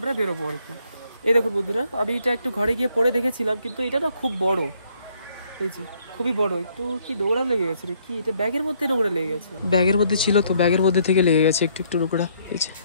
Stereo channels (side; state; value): both; inverted; correlation -0.68